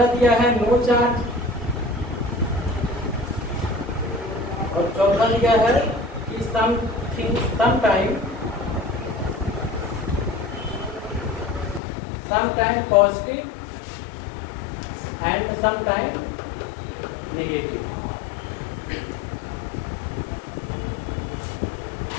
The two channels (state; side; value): drops out; right; at 11.8 s